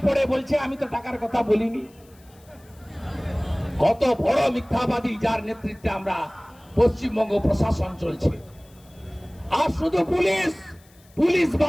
পড়ে বলছে আমি তো টাকার কথা বলিনি। কত বড় মিথ্যাবাদী, যার নেতৃত্বে আমরা পশ্চিমবঙ্গ প্রশাসন চলছে। আর শুধু পুলিশ, পুলিশ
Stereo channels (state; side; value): noise; left; hiss, 29 dB below the sound